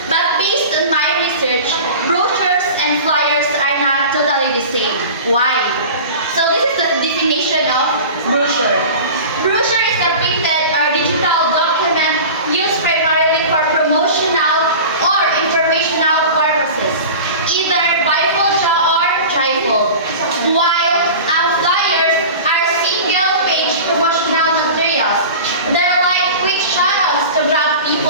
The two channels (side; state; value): both; inverted; correlation -0.35